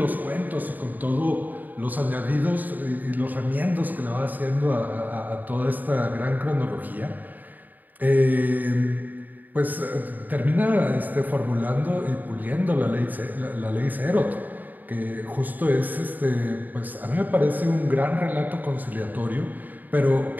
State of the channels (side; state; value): left; late; 0.085 ms